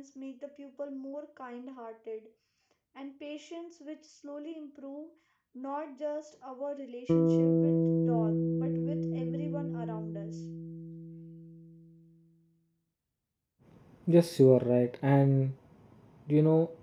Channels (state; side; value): identical; both; correlation 1.00